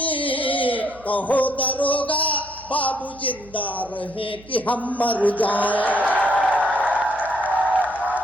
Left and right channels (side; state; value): right; noise; hum, 22 dB below the sound